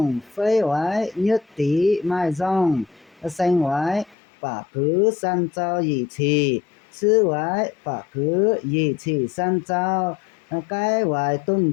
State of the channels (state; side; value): drops out; right; at 4.2 s